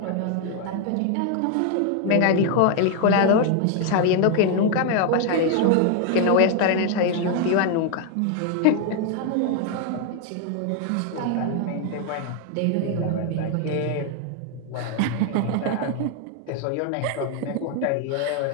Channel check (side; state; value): both; different; correlation 0.00